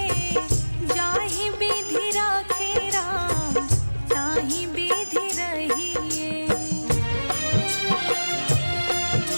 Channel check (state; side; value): inverted; both; correlation -1.00